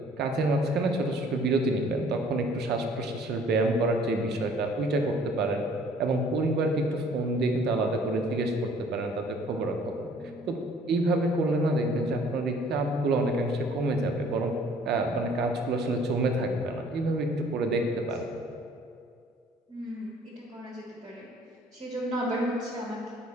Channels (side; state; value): both; normal; correlation 0.56